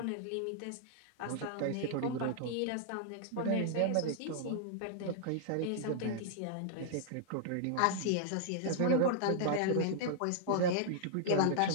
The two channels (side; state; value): both; different; correlation -0.01